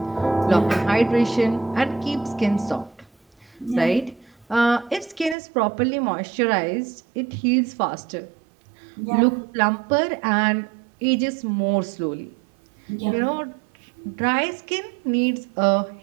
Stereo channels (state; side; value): drops out; left; at 5.4 s